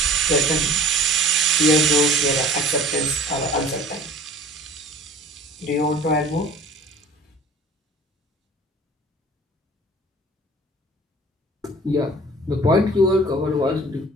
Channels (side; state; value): both; normal; correlation 0.46